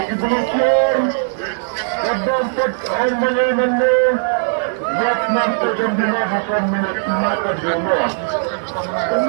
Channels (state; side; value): silent; left; digital silence